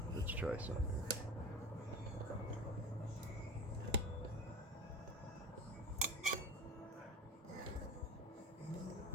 Let's try something here.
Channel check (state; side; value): normal; both; correlation 0.31